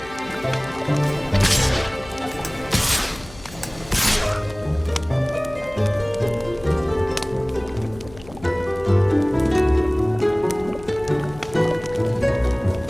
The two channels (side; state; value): left; noise; hum, 19 dB below the sound